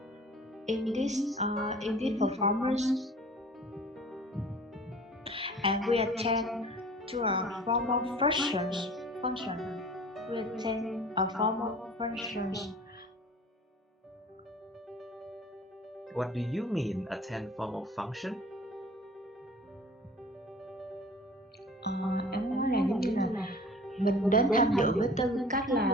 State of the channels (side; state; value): both; normal; correlation 0.45